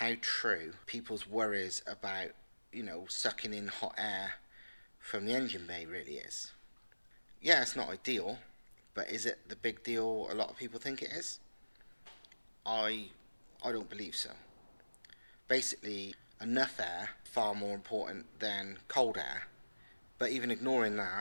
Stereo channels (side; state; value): both; inverted; correlation -1.00